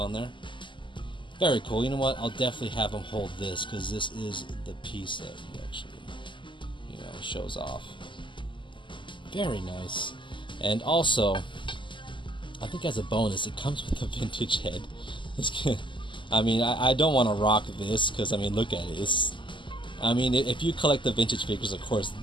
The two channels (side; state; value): right; late; 0.24 ms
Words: there. Very cool. You know what? I'll definitely have him hold this, because this is the piece that he actually, shows off. Very nice. And also, I think as a bonus, it comes with a vintage head. I mean, I don't want to rock this, because I mean, look at it. I mean, if you collect the vintage figures, of course,